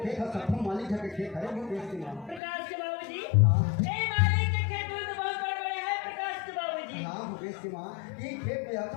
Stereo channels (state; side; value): drops out; right; at 2.4 s